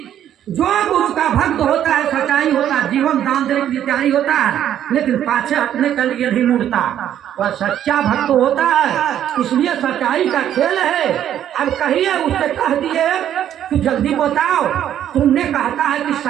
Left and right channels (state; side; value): quieter; left; 10.7 dB